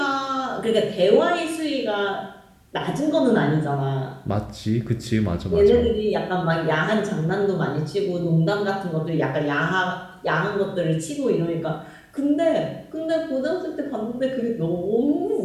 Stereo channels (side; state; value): both; identical; correlation 1.00